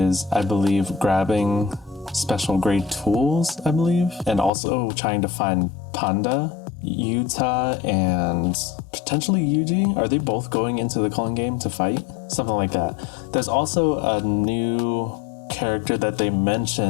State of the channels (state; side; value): drops out; right; at 4.5 s